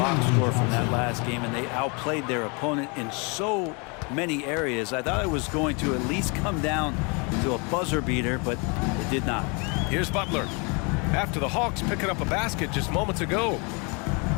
score from that last game, and they outplayed their opponent in so many areas. I thought it was going to at least come down to a buzzer beater, but it did not. Here's Butler. After the Hawks picking up a basket just moments ago.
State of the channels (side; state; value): right; quieter; 32.1 dB